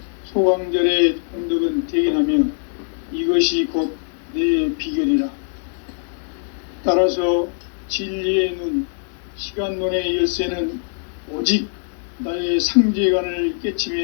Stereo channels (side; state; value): right; silent; digital silence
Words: 소강절의 공덕은 대견하며 이것이 곧 내 비결이라. 따라서 진리의 눈, 시간론의 열쇠는 오직 나의 상제관을